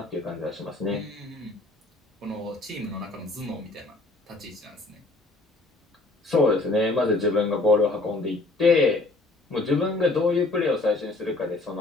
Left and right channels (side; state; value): right; quieter; 3.0 dB